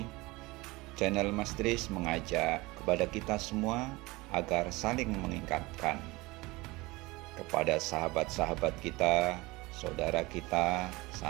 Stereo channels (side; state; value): left; quieter; 22.1 dB